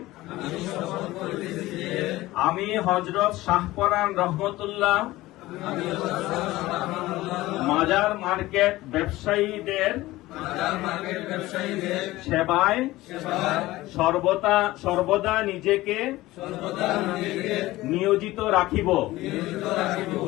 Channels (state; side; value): quieter; right; 17.9 dB